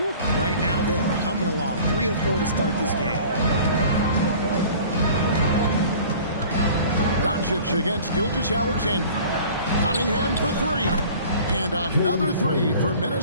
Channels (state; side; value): inverted; both; correlation -0.46